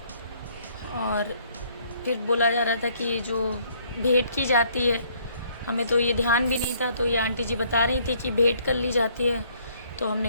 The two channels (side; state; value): both; inverted; correlation -0.64